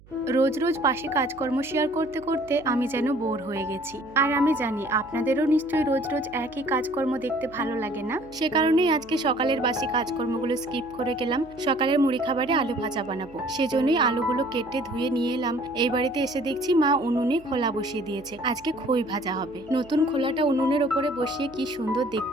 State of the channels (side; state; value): right; noise; hum, 25 dB below the sound